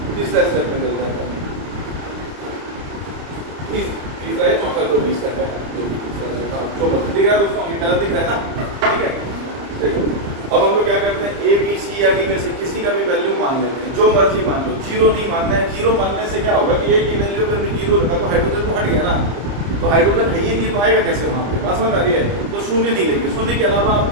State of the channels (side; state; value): left; late; 30 ms